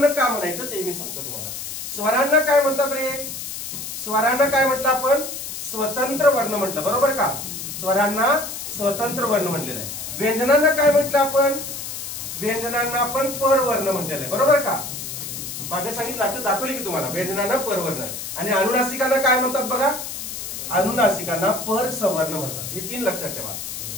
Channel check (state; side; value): noise; left; hiss, 7 dB below the sound